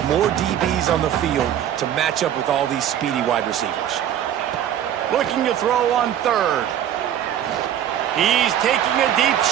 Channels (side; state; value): left; quieter; 10.5 dB